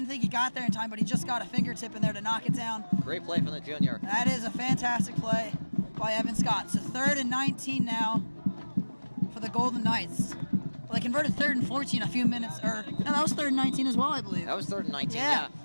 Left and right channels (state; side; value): inverted; both; correlation -1.00